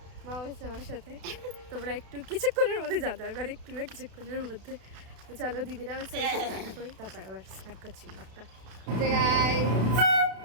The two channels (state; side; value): late; left; 32 ms